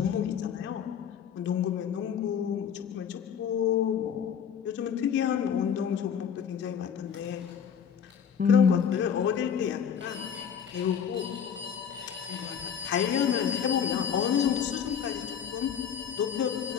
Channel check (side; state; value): right; quieter; 7.8 dB